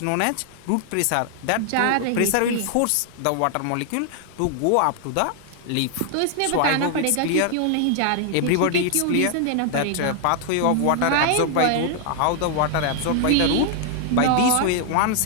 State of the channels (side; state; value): both; different; correlation 0.00